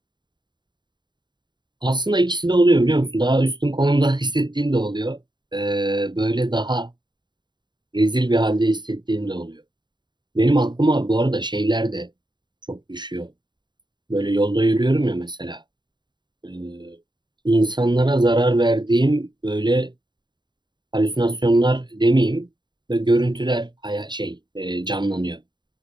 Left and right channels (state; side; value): late; left; 0.22 ms